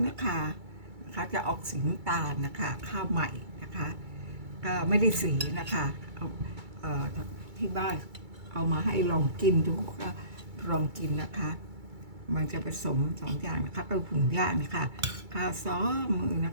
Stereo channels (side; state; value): left; late; 2.3 ms